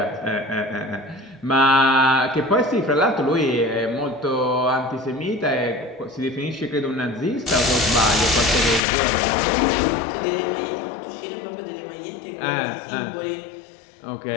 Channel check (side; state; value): right; drops out; at 8.8 s